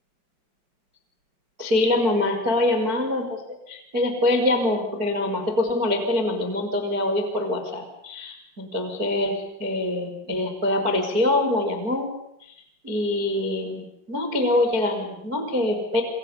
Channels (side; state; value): left; late; 4.6 ms